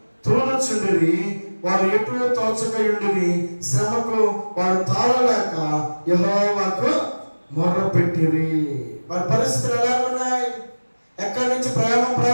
తోలుచుండిరి. వారు ఎటు తోచకయుండిరి. శ్రమకు వారు తాళలేక యెహోవాకు మొర్రపెట్టిరి. వారి పరిస్థితులు ఎలా ఉన్నాయి? ఎక్కడి నుంచి ప్రయాణం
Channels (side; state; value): both; inverted; correlation -1.00